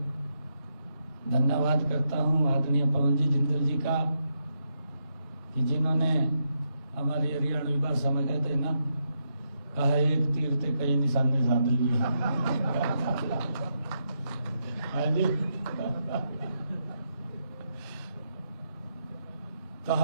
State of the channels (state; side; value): inverted; both; correlation -0.80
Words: धन्यवाद करता हूं आदरणीय पवन जी जिंदल जी का कि जिन्होंने हमारी हरियाणवी भाषा में कहते ना, कहा एक तीर से कई निशाने साध लिए। तो